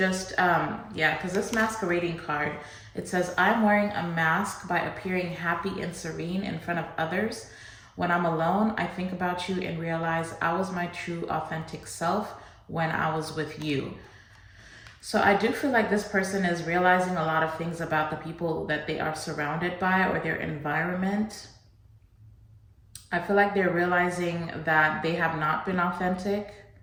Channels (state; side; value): identical; both; correlation 1.00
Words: yeah, because this masquerading card, it says, I'm wearing a mask by appearing happy and serene in front of others. When I'm alone, I think about you and realize I was my true authentic self when I was with you. So I do feel like this person is realizing a lot of things about the people that they are surrounded by, or their environment. I feel like they're realizing that they have not been authentic.